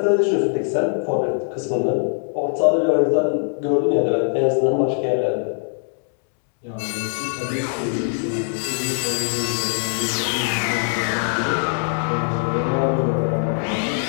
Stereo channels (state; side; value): silent; right; digital silence